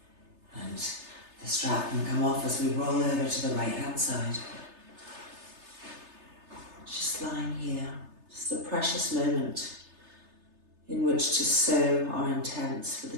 And the strap can come off as we roll over to the right hand side. Just lying here, just a precious moment in which to sow our intents for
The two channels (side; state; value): left; late; 3.3 ms